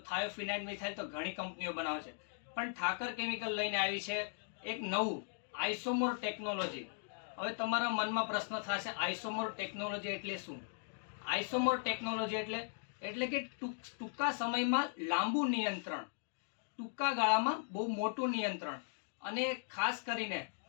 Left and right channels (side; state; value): right; silent; digital silence